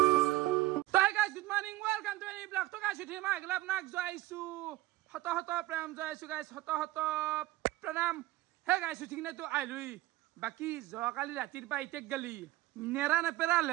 morning, welcome to any vlog. To guys, today my glove nak joaisu. Hot pranam joaisu guys. Hot pranam. Hey guys, today na to ailui. Baki joakali ratir pa itek gali. Nera na pera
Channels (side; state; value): left; quieter; 17.6 dB